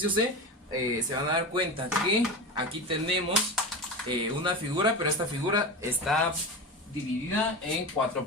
C se van a dar cuenta que aquí tenemos una figura, pero esta figura está dividida en 4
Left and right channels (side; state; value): both; normal; correlation 0.24